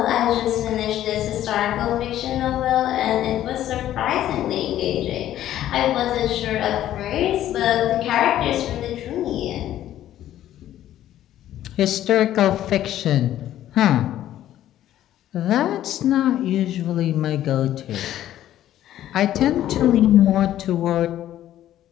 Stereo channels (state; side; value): quieter; right; 12.5 dB